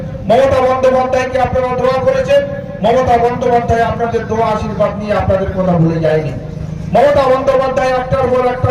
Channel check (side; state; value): both; identical; correlation 1.00